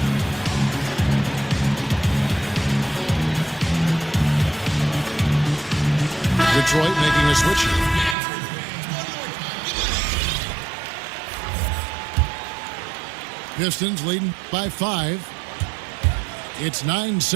Detroit making a switch. Pistons leading by 5. It's 9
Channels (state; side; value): drops out; left; at 8.2 s